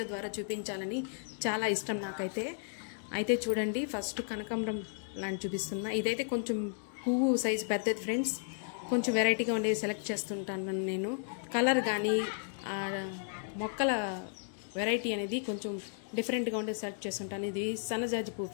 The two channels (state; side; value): silent; right; digital silence